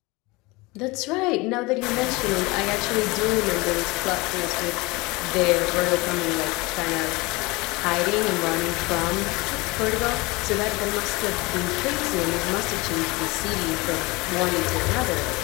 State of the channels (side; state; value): right; quieter; 23.9 dB